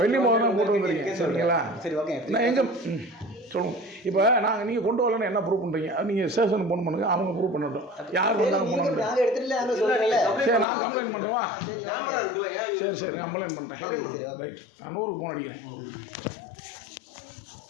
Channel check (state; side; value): drops out; right; at 10.7 s